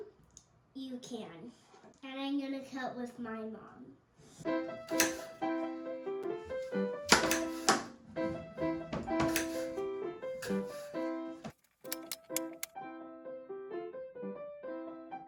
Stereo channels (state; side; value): identical; both; correlation 1.00